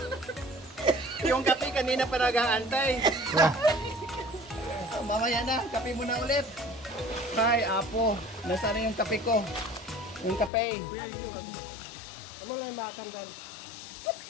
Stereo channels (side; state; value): right; drops out; at 10.5 s